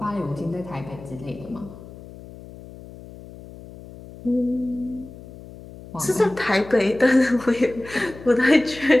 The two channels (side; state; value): left; noise; hum, 17 dB below the sound